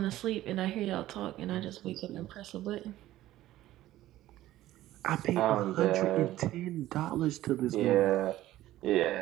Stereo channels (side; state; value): left; quieter; 14.8 dB